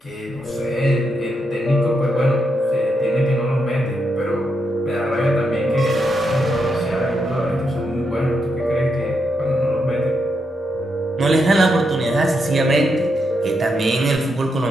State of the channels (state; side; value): normal; both; correlation 0.82